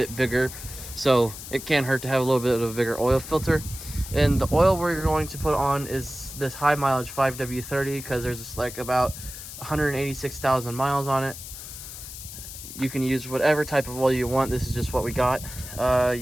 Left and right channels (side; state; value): left; noise; hiss, 12 dB below the sound